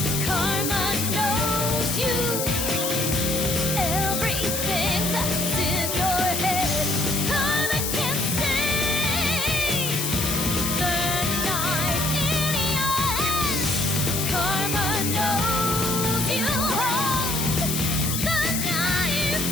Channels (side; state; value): left; noise; hiss, 1 dB below the sound